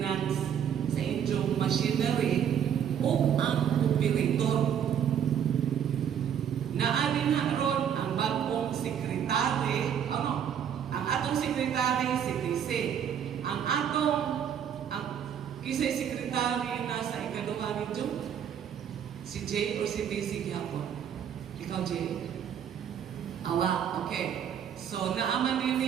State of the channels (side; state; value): left; quieter; 8.7 dB